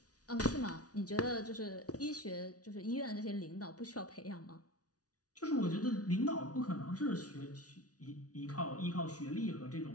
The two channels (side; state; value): right; late; 0.68 ms